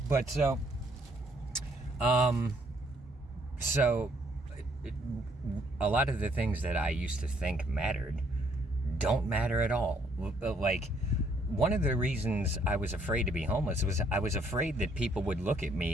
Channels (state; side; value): normal; both; correlation 0.67